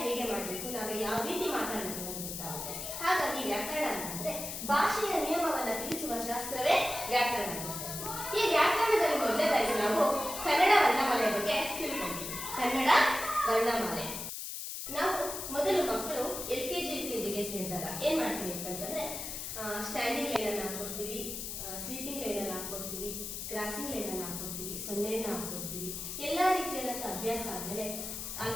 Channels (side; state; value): left; noise; hiss, 6 dB below the sound